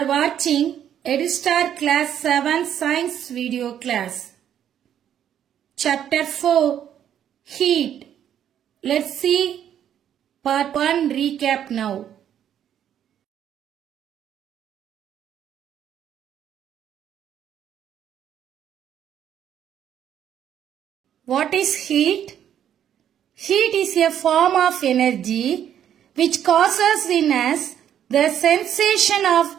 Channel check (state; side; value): quieter; left; 9.9 dB